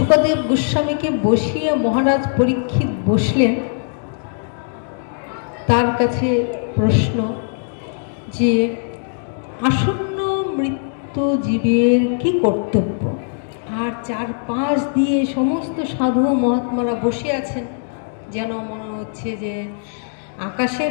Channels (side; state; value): right; silent; digital silence